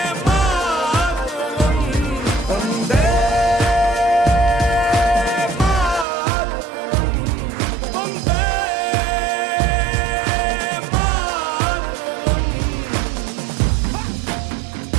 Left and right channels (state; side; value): drops out; left; at 6.1 s